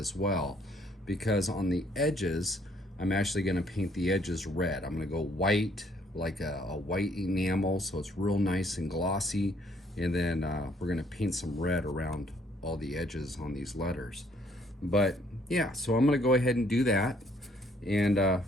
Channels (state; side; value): normal; both; correlation 0.65